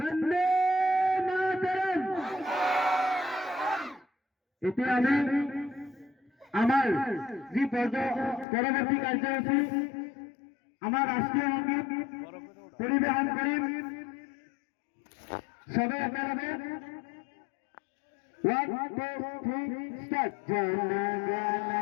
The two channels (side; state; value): right; drops out; at 8.5 s